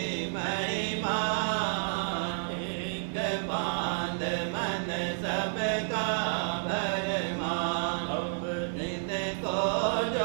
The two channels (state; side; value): silent; left; digital silence